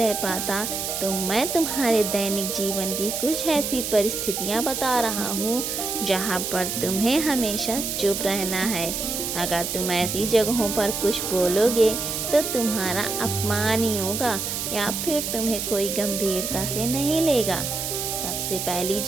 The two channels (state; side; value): noise; right; hiss, 3 dB below the sound